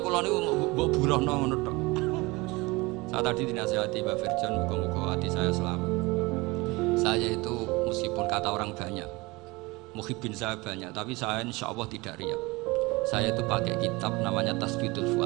kula niku mbok burohno ngono tok. Saya tadi dinasihati Mbak Virjon, muga-muga hati saya selamat. Saya itu meskipun kata orang banyak, muhibbin saya banyak, tapi saya insya Allah tidak riak. Saya itu pakai kitab namanya Tasbitul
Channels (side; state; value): left; quieter; 23.4 dB